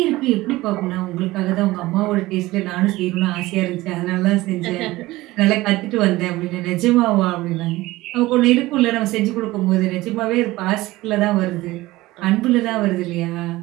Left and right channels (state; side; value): quieter; left; 18.6 dB